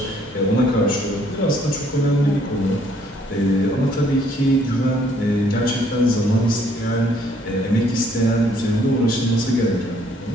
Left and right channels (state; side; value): normal; both; correlation 0.64